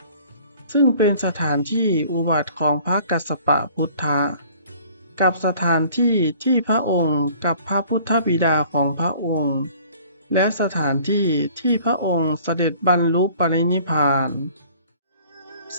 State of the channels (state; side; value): inverted; both; correlation -0.52